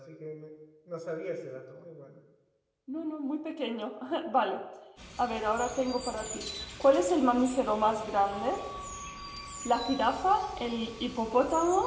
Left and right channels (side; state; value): both; identical; correlation 1.00